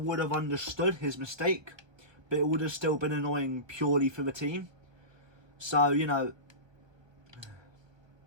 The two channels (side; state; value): left; late; 1.3 ms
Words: have understood his mistake. But it would have still been annoying purely for the team. So, you know,